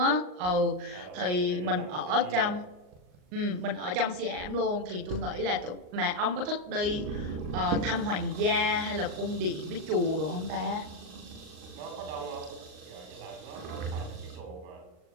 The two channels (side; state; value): left; late; 39 ms